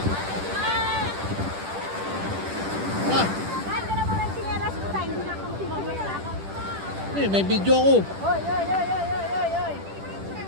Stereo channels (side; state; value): left; late; 10 ms